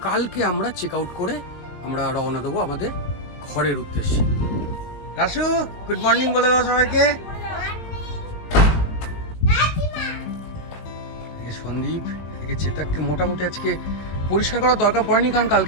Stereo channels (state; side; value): late; right; 19 ms